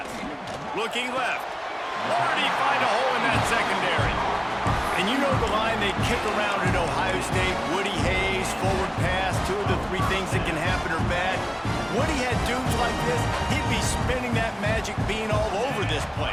Looking left. Where did he find a hole in that secondary? And you know the line they kick around at Ohio State, Woody Hayes, forward pass, 2 of the 3 things that can happen are bad. Woody had dudes like this, he'd be spinning that magic bean all over this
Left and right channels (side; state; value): both; identical; correlation 1.00